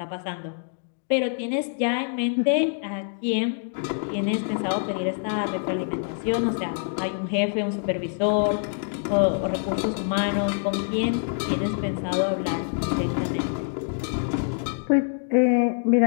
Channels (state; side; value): silent; right; digital silence